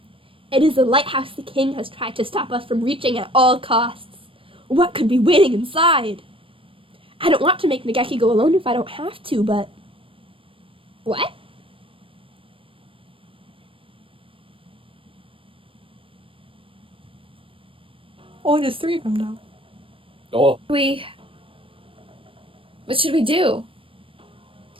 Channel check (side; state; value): left; late; 0.26 ms